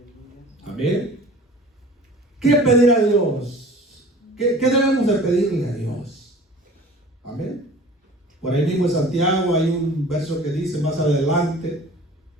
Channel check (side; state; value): both; normal; correlation 0.44